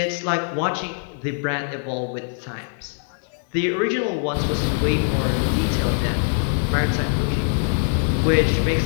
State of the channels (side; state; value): right; silent; 63 dB below the other